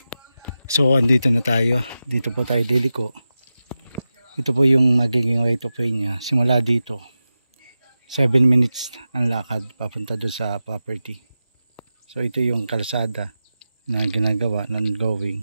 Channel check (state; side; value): inverted; both; correlation -0.93